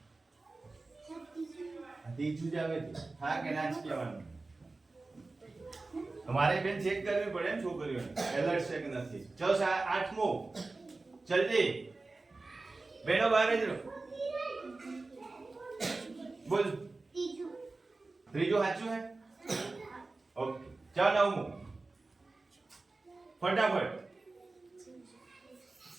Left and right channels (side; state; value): left; quieter; 3.4 dB